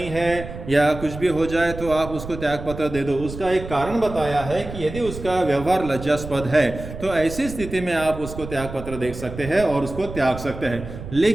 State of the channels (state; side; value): noise; right; rumble, 11 dB below the sound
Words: है या कुछ भी हो जाए तो आप उसको त्याग पत्र दे दो। उसका एक कारण बताया है कि यदि उसका व्यवहार लज्जास्पद है तो ऐसी स्थिति में आप उसको त्याग पत्र दे सकते हैं और उसको त्याग सकते हैं।